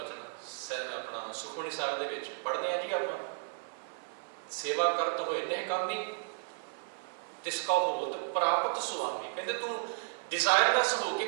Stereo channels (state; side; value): silent; left; 55 dB below the other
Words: ਆਪਣਾ ਸੁਖਮਨੀ ਸਾਹਿਬ ਦੇ ਵਿੱਚ ਪੜ੍ਹਦੇ ਹਾਂ ਜੀ ਆਪਾਂ, ਸੇਵਾ ਕਰਤ ਹੋਏ ਨਿਹਕਾਮੀ ਤਿਸ ਕਾ ਹੋਤ ਪ੍ਰਾਪਤ ਸੁਆਮੀ। ਕਹਿੰਦੇ ਤੂੰ ਡਿਜ਼ਾਇਰਲੈਸ ਹੋ ਕੇ